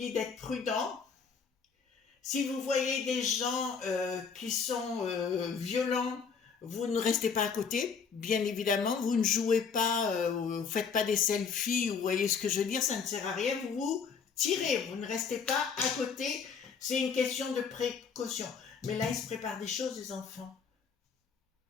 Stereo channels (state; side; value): quieter; right; 5.9 dB